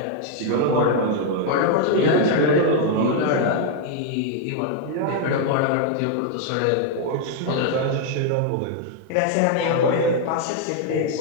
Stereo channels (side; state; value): both; different; correlation 0.00